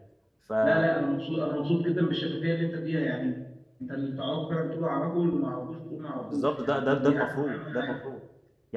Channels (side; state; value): both; identical; correlation 1.00